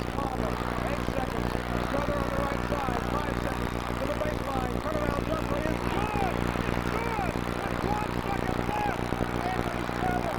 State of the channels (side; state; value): both; identical; correlation 1.00